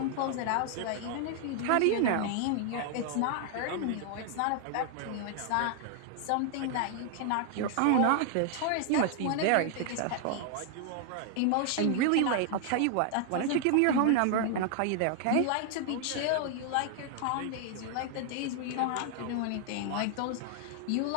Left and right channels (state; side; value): different; both; correlation 0.00